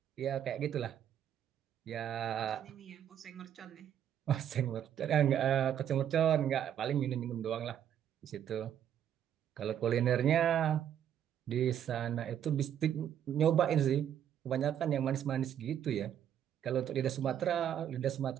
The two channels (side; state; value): left; quieter; 9.8 dB